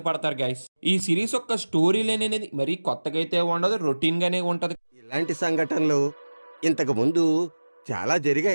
పడతారు గైస్. ఈ సిరీస్ యొక్క స్టోరీ లైన్ అనేది మరీ కొత్తగా అయితే ఉండదు, రొటీన్ గానే ఉంటది. ఇలాంటి సంఘటనలు ఇంతకు ముందు చాలా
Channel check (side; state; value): both; inverted; correlation -1.00